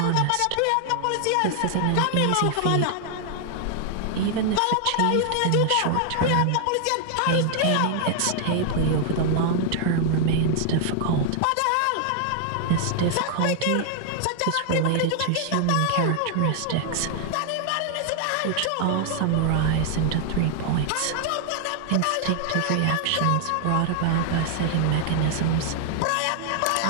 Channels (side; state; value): both; different; correlation 0.00